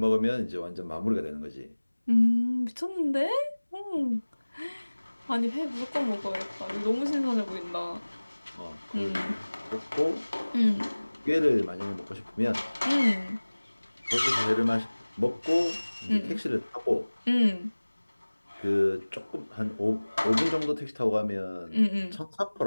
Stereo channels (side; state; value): both; inverted; correlation -1.00